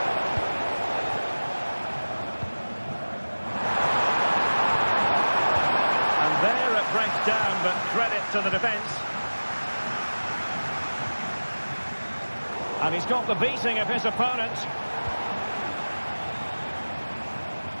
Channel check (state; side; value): inverted; both; correlation -1.00